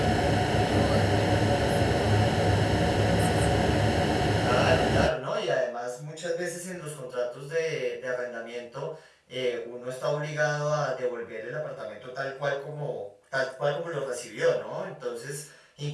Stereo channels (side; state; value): both; identical; correlation 1.00